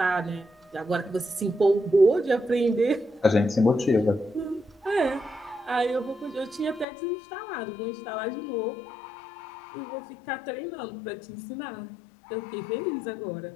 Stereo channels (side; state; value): right; drops out; at 6.9 s